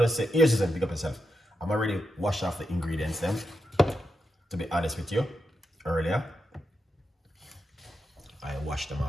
say, here's just pick up yourself. I'm already washed off the ingredients then, to be honest with you, earlier. I washed them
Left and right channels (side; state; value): both; normal; correlation 0.86